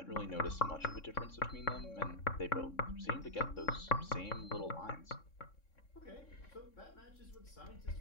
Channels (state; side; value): late; right; 3.6 ms